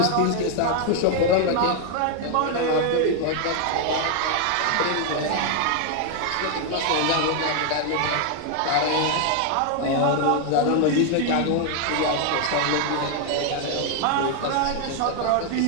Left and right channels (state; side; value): different; both; correlation 0.00